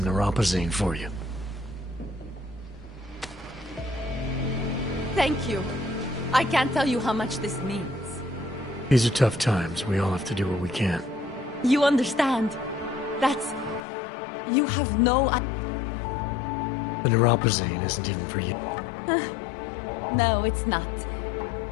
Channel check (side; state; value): right; drops out; at 13.8 s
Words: neuropazine for you. Thank you. I can't tell you how much this means. These are tough times. We all have to do what we can. You understand? That's... You have no... The neuropazine isn't even for you. No, it's not.